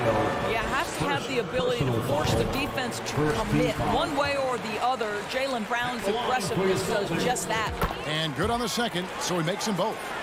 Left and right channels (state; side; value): identical; both; correlation 1.00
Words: You have to have the ability to force the defense to commit one way or the other. Jaylen Brown's aggressiveness does just that. And good on the second, so he makes them both.